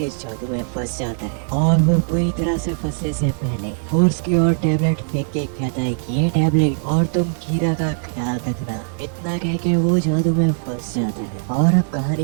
जादू में फंस जाता है और वो पूरी तरह से फंसने से पहले फोर्स की ओर टैबलेट फेंक के कहता है कि ये टैबलेट और तुम कीरा का ख्याल रखना। इतना कह के वो जादू में फंस जाता है। और अब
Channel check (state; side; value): silent; left; digital silence